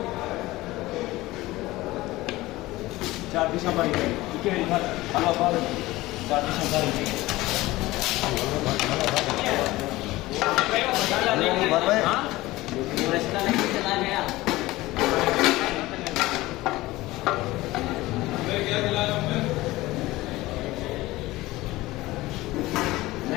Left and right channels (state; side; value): quieter; right; 18.6 dB